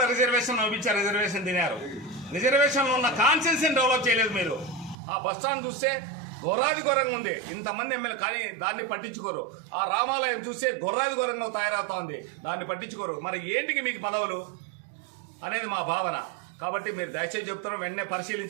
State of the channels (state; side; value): drops out; left; at 5.0 s